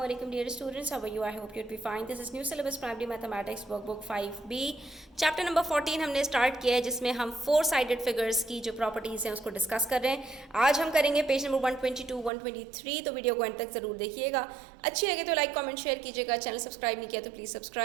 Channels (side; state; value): left; drops out; at 12.3 s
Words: alaikum dear students. How are you? I hope you'd be fine. This is new syllabus primary mathematics workbook 5B. Chapter number 14 हमने start किया है जिसमें हम 4 sided figures की जो properties हैं उसको डिस्कस कर रहे हैं. आज हम करेंगे पेज नंबर 122, 123. तो वीडियो को एंड तक ज़रूर देखिएगा. अच्छी लगे तो लाइक कमेंट शेयर कीजिएगा. चैनल सब्सक्राइब नहीं किया तो प्लीज़